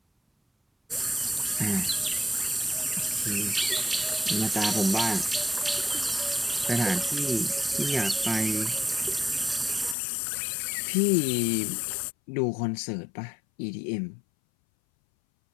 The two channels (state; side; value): drops out; right; at 10.0 s